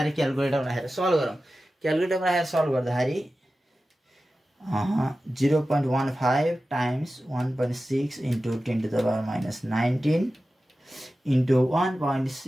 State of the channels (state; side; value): normal; both; correlation 0.94